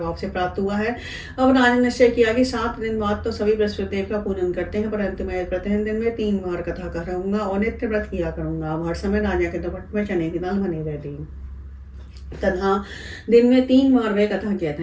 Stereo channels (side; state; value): both; identical; correlation 1.00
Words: से प्राप्त हुआ है। अब राजा ने निश्चय किया कि 7 दिन बाद तो सभी बृहस्पति देव का पूजन करते हैं, परंतु मैं प्रतिदिन दिन में 3 बार कथा करूंगा और नित्य व्रत किया करूंगा। अब हर समय राजा के दोपट में चने की दाल बनी रहती तथा दिन में 3 बार वह कथा कहता